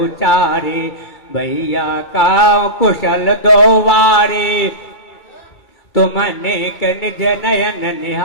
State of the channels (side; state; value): right; late; 2.3 ms